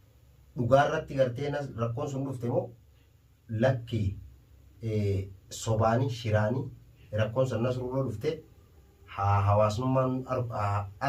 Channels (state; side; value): identical; both; correlation 1.00